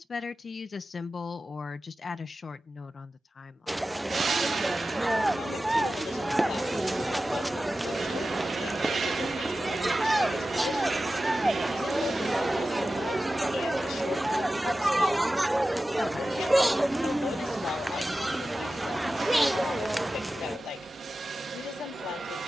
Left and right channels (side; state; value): both; normal; correlation 0.94